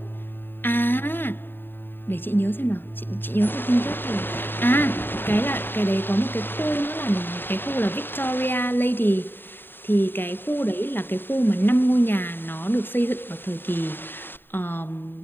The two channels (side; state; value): right; late; 0.096 ms